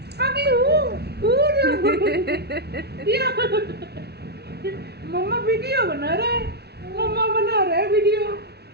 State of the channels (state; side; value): late; left; 0.48 ms